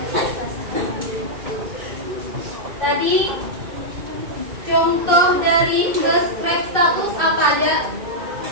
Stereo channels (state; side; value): late; left; 2.6 ms